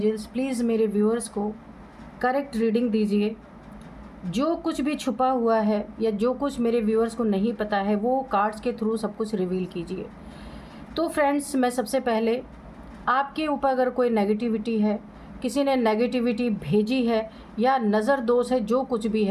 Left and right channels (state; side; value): identical; both; correlation 1.00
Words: please मेरे व्यूअर्स को करेक्ट रीडिंग दीजिए। जो कुछ भी छुपा हुआ है या जो कुछ मेरे व्यूअर्स को नहीं पता है, वो कार्ड्स के थ्रू सब कुछ रिवील कीजिए। तो फ्रेंड्स, मैं सबसे पहले आपके ऊपर अगर कोई नेगेटिविटी है, किसी ने नेगेटिविटी भेजी है या नज़र दोष है, जो कुछ भी